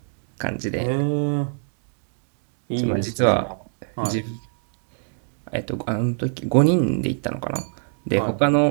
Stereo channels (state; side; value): silent; left; digital silence